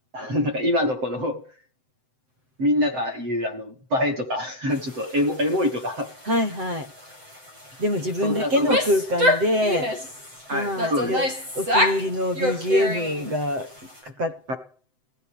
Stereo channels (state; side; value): late; left; 7.8 ms